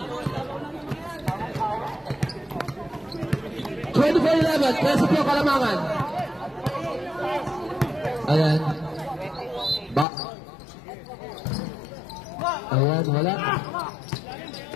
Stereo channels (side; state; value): right; drops out; at 10.1 s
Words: 24-11, Preso po Kalamangan. Ayan. Ayan, wala.